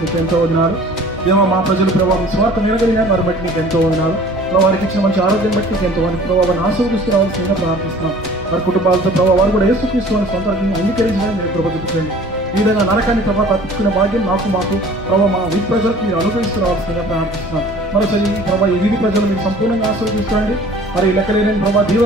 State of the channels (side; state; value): both; normal; correlation 0.48